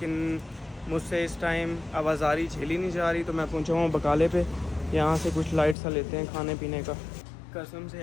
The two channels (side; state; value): right; drops out; at 5.8 s